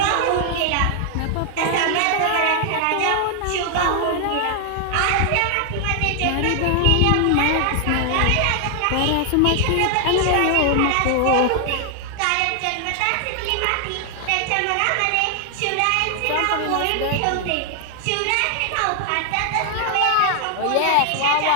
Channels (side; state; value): both; different; correlation 0.00